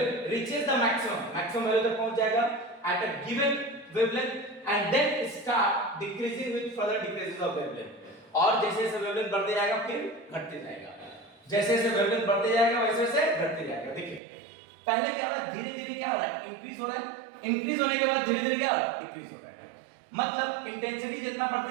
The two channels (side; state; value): left; drops out; at 14.2 s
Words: reaches the maximum value तक पहुंच जाएगा at a given wavelength and then start decreasing with further decreases of wavelength. और जैसे जैसे वेवलेंथ बढ़ते जाएगा फिर घटते जाएगा, जैसे जैसे वेवलेंथ बढ़ते जाएगा वैसे वैसे घटते जाएगा। देखिए पहले क्या हो रहा है, धीरे धीरे क्या हो रहा है, इंक्रीज हो रहा है, इंक्रीज होने के बाद धीरे धीरे क्या हो रहा है, डिक्रीज हो रहा है। मतलब इंटेंसिटी जितना बढ़ते